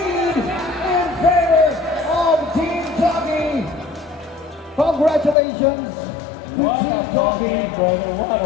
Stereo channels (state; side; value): drops out; right; at 5.4 s